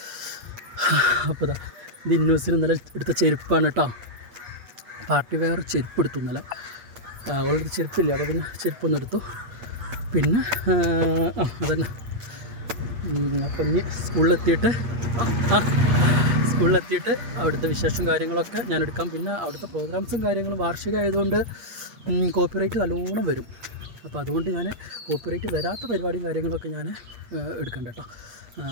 അപ്പോൾ ഇത് ഇന്നൂസിന് ഇന്നലെ എടുത്ത ചെരുപ്പാണ് കേട്ടോ. പാർട്ടി വെയർ ചെരുപ്പ് എടുത്തു ഇന്നലെ. അവളുടെ ചെരുപ്പില്ല, അപ്പോൾ പിന്നെ ചെരുപ്പൊന്നും എടുത്തു. പിന്നെ അതന്നെ. അപ്പം ഇനി സ്കൂളിലെത്തിയിട്ട് അവിടുത്തെ വിശേഷം കാര്യങ്ങളൊക്കെ ഞാൻ എടുക്കാം. പിന്നെ അവിടുത്തെ പ്രോഗ്രാംസും കാര്യങ്ങളും വാർഷികമായതുകൊണ്ട് കോപ്പിറൈറ്റ് നല്ലോണം വരും. അപ്പോൾ അതുകൊണ്ട് ഞാൻ കോപ്പിറൈറ്റ് വരാത്ത പരിപാടിയും കാര്യങ്ങളൊക്കെ ഞാൻ എടുക്കണ്ട കേട്ടോ.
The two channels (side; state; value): left; late; 8.5 ms